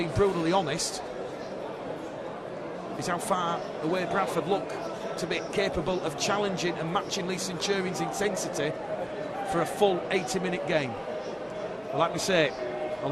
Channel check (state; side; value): identical; both; correlation 1.00